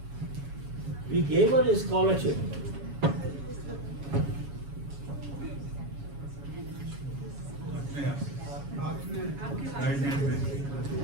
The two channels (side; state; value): left; late; 7.2 ms